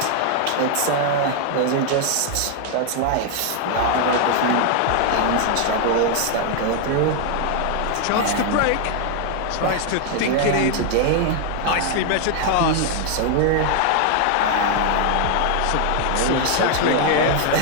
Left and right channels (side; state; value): both; different; correlation 0.00